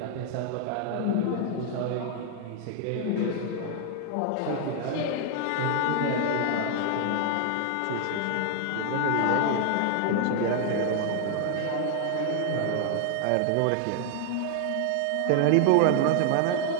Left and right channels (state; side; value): different; both; correlation 0.00